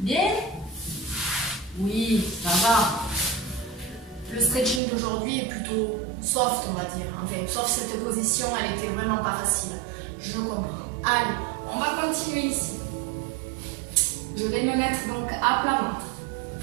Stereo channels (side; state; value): left; drops out; at 4.8 s